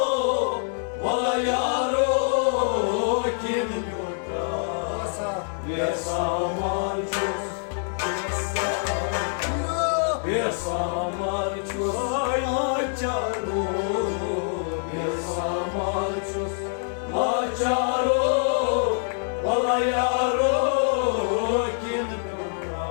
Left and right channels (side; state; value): right; silent; 62 dB below the other